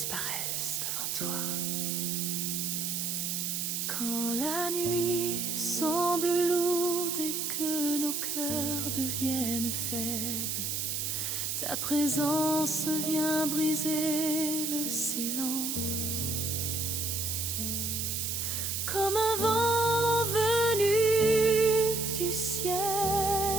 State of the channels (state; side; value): noise; right; hiss, 1 dB below the sound